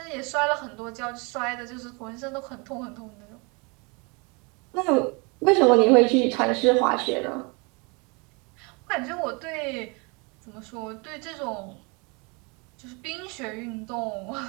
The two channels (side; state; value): left; quieter; 30.4 dB